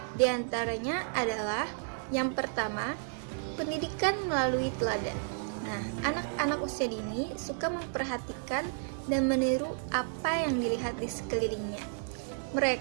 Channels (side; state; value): left; silent; 56 dB below the other